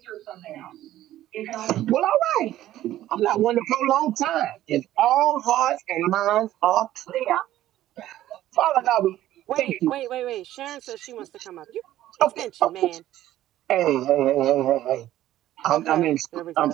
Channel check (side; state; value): left; quieter; 13.7 dB